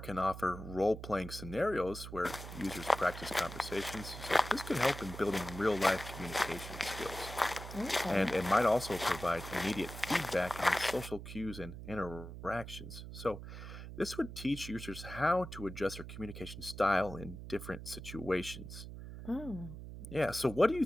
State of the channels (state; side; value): noise; right; hum, 11 dB below the sound